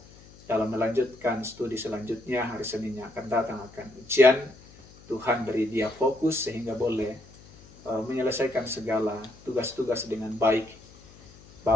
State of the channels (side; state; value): left; noise; hum, 23 dB below the sound